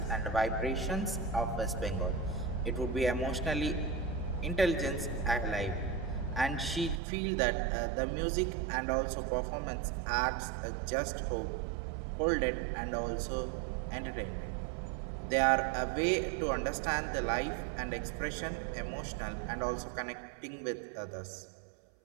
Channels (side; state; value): left; drops out; at 7.0 s